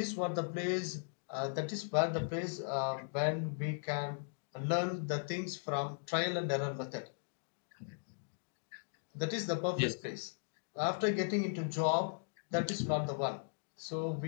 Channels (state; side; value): silent; right; digital silence